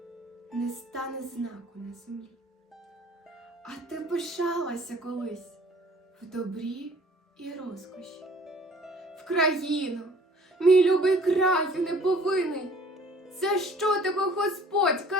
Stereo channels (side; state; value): both; normal; correlation 0.53